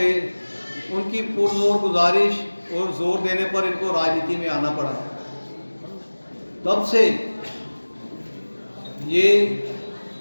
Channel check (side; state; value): both; inverted; correlation -1.00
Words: उनकी पुरजोर गुजारिश और जोर देने पर इनको राजनीति में आना पड़ा। तब से ये